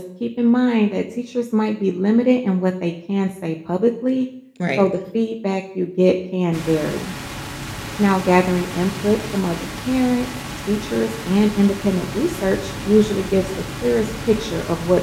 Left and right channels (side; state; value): both; identical; correlation 1.00